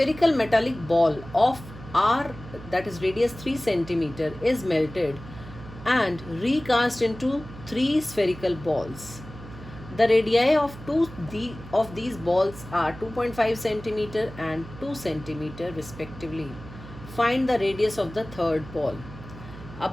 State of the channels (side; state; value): right; noise; hum, 15 dB below the sound